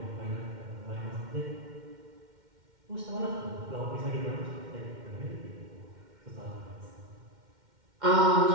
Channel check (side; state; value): left; late; 2.1 ms